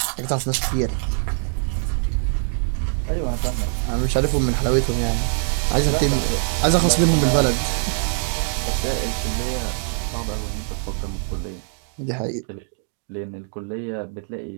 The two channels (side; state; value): left; silent; 63 dB below the other